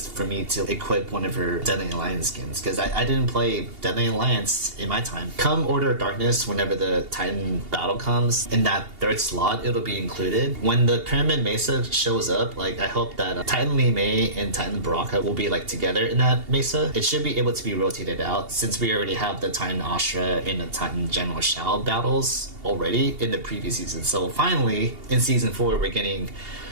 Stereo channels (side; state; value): left; late; 2.8 ms